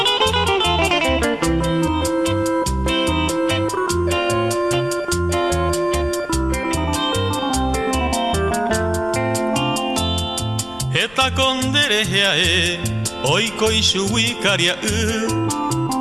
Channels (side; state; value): left; noise; rumble, 25 dB below the sound